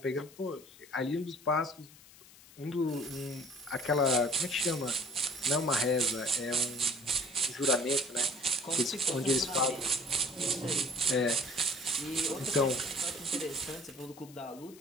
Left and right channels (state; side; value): noise; left; hiss, 22 dB below the sound